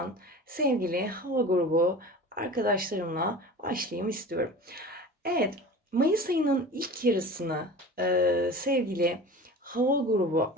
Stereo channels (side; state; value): both; normal; correlation 0.36